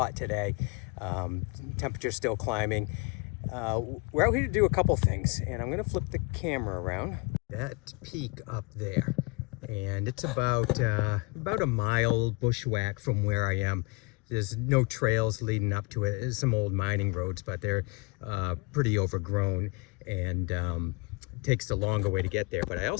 today. Temperature's still climbing. We're out here to do a couple things, and I'm going to flip the camera around. That peak up there, and it's about a mile bushwhack from where I am. There's no trails leading up to it. There's some old mining roads, but they're pretty overgrown, and it takes the longer way to get there. But I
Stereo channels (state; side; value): quieter; right; 28.5 dB